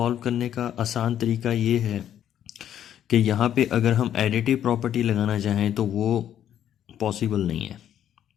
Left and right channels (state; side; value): quieter; right; 10.4 dB